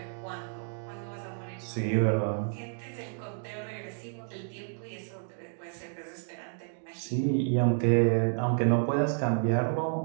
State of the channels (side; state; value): left; silent; 57 dB below the other